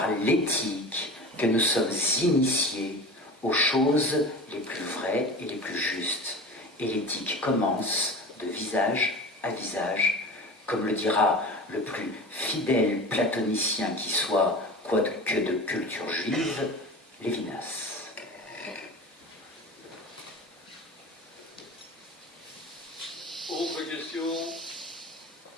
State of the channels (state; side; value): normal; both; correlation 0.33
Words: l'éthique que nous sommes initiés aux choses les plus vraies et les plus justes. Et l'éthique commence de visage à visage, comme le dira le plus fidèle platonicien qui soit, quoique de culture juive, Lévinas. Autre question?